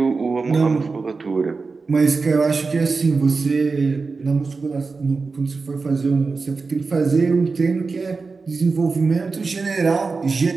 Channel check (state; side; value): quieter; left; 4.3 dB